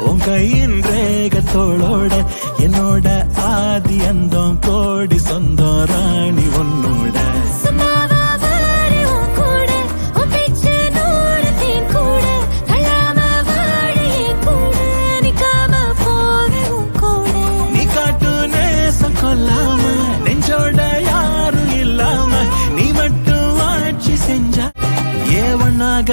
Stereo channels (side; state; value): both; inverted; correlation -1.00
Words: உன் கையின் ரேகத்தோளோட என்னோட ஆதி அந்தம் கோடி சொந்தம் ராணி உன்னோட கொல்லாம நெஞ்சோட யாரும் இல்லாம நீ மட்டும் ஆட்சி செஞ்சா